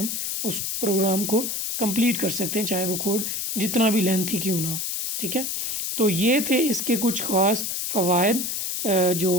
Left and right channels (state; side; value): noise; left; hiss, 2 dB below the sound